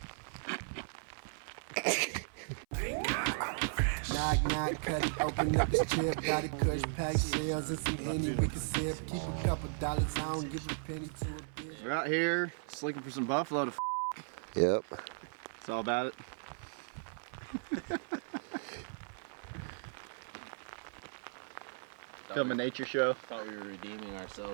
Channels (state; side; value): silent; left; 54 dB below the other